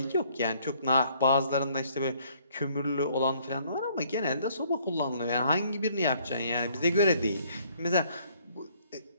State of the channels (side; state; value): both; inverted; correlation -0.63